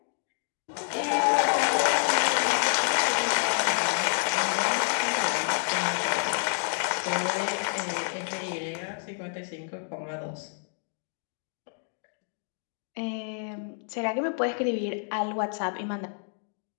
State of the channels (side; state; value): right; silent; digital silence